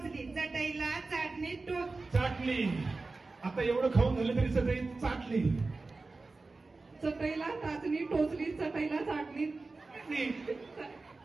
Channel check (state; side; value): quieter; left; 3.6 dB